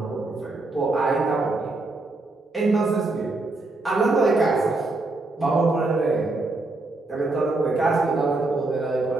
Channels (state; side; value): quieter; left; 3.1 dB